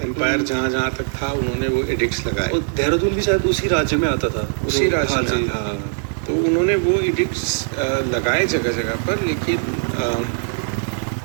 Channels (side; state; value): left; silent; 57 dB below the other